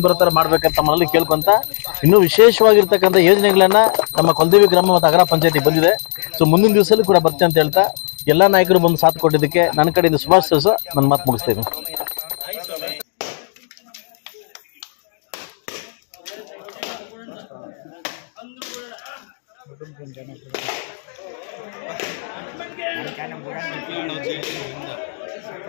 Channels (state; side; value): silent; right; digital silence